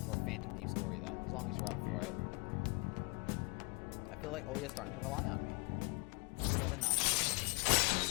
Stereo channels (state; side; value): quieter; right; 30.4 dB